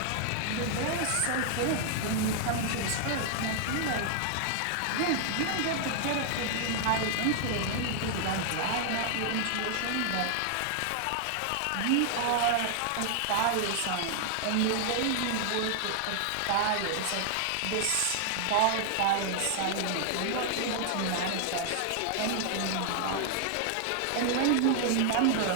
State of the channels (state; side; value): different; both; correlation 0.00